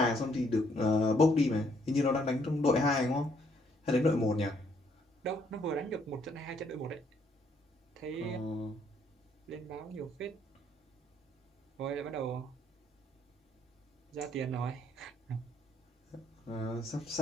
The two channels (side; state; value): both; normal; correlation 0.69